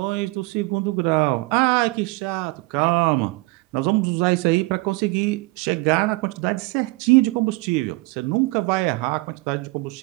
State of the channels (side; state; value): left; quieter; 22.8 dB